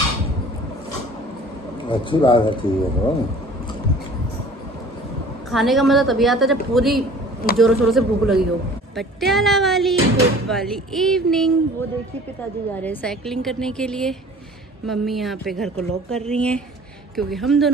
अच्छी बात है, ठीक है। तो खाने का मज़ा तभी आता है जब पूरी जोरों शोरों से भूख लगी हो। पटियाला वाली गुड वाली इवनिंग। वो देखिए पिताजी जा रहे हैं साइकिलिंग करने के लिए। मम्मी यहाँ पे घर को लॉक कर रही हैं क्योंकि हम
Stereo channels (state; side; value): normal; both; correlation 0.47